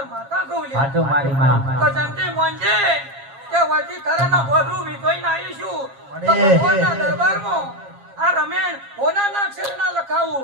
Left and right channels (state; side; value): late; left; 7.4 ms